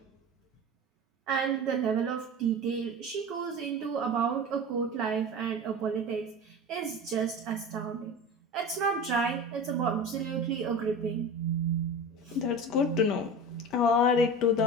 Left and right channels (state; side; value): normal; both; correlation 0.31